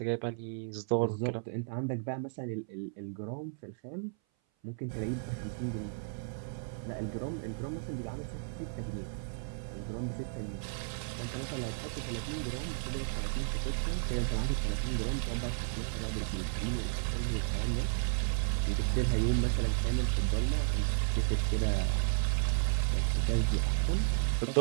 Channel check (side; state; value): left; silent; 55 dB below the other